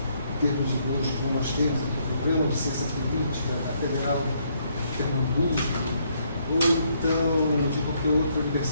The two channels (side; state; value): both; inverted; correlation -0.71